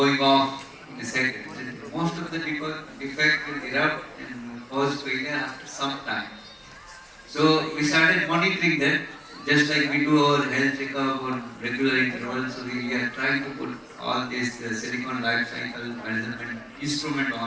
off in a second. Most of the defect will erupt and cause failure after some time. So we started monitoring that, just like we do our health checkup or regular intervals. So we are trying to put all this silicon life cycle management instrument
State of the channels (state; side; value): identical; both; correlation 1.00